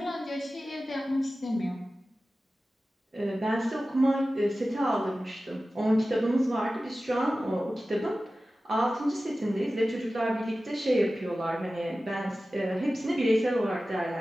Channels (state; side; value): normal; both; correlation 0.95